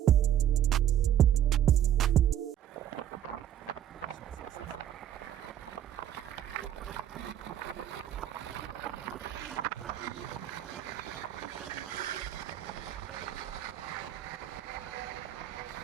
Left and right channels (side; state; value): left; quieter; 10.7 dB